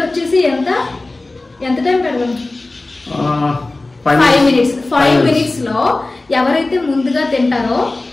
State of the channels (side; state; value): right; quieter; 3.1 dB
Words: వచ్చేసి ఎంత టైం పెడదాం? 5 minutes. 5 minutes లో ఎవరైతే ముందుగా తింటారో